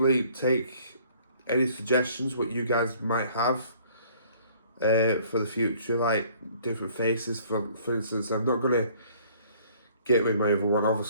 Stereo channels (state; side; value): inverted; both; correlation -0.57